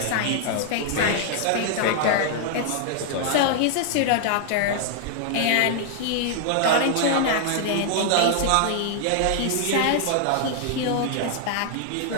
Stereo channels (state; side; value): different; both; correlation 0.00